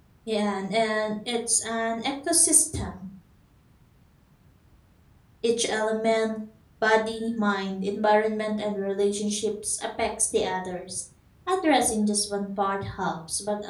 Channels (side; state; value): both; identical; correlation 1.00